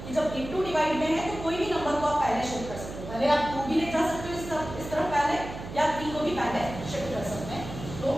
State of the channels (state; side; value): noise; right; hum, 10 dB below the sound